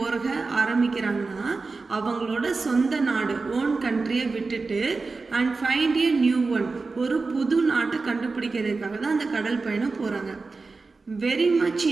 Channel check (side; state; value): left; quieter; 4.0 dB